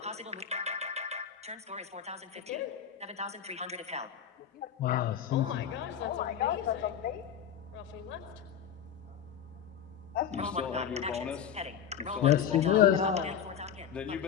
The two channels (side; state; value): right; quieter; 8.5 dB